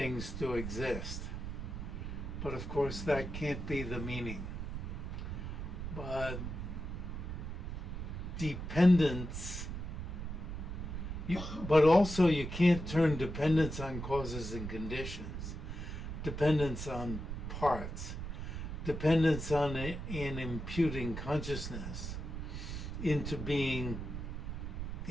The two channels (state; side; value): noise; right; rumble, 5 dB below the sound